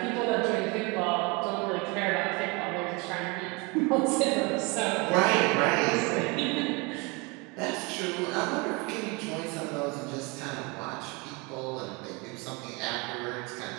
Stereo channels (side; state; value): left; quieter; 28.1 dB